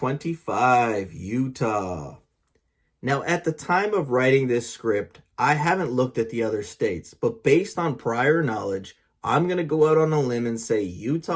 Utah. Now, at the time of writing this script, I haven't looked at the other states, but based on prior knowledge, I'm going to go out on a limb and say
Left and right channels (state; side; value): identical; both; correlation 1.00